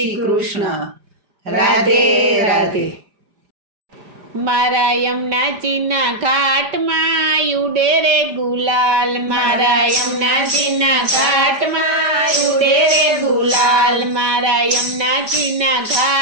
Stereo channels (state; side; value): late; left; 5.0 ms